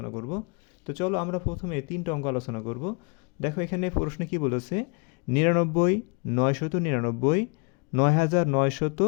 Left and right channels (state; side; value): quieter; right; 34.6 dB